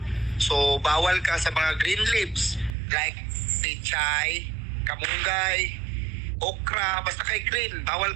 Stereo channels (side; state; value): left; drops out; at 2.8 s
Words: So, bawal ka sa mga green leaves, like pechay, kamunggay, okra, basta kay green, bawal